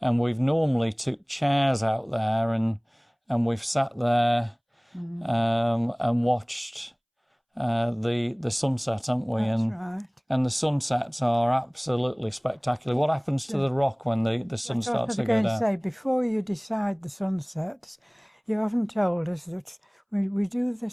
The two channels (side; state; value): both; identical; correlation 1.00